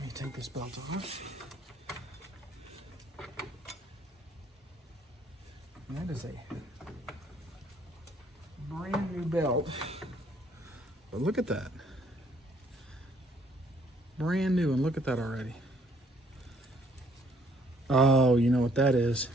me take this belt off. And that is a brand new belt. But look at that. Brand new, and look at that already. Oh, you know what that is?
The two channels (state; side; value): normal; both; correlation 0.65